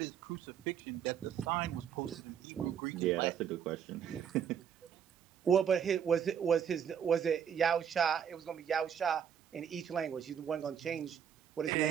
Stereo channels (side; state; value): left; quieter; 8.3 dB